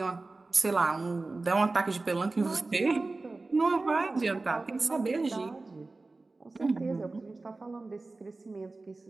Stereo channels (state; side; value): quieter; left; 3.4 dB